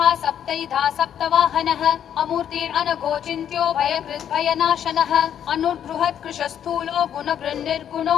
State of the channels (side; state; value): right; quieter; 9.5 dB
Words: सप्तैधा सप्तवाहनः अमूर्तिरनघोचिन्त्यो भयकृद्भयनाशनः अनुर्बृहत्कृशस्थूलो गुणवृन्निर्गुणो